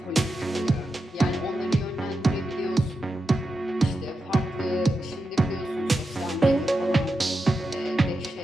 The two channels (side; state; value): both; normal; correlation 0.89